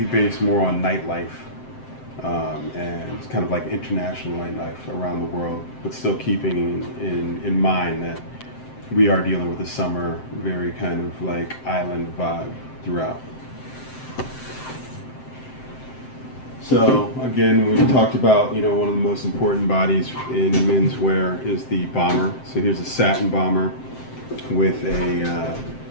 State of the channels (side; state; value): right; late; 7.7 ms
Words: based more on nightlife. And it's kind of like international nightlife around the world, but still keeping in mind that we are dealing with a summer, very kind of like island vibe throughout. So again, we talked about, one of the most important bodies in menswear is the bomber. So here's a satin bomber with a